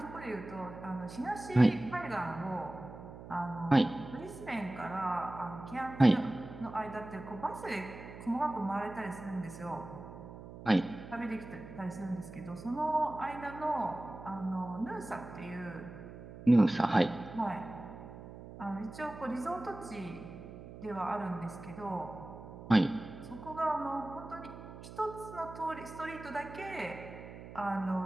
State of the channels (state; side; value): noise; right; hum, 13 dB below the sound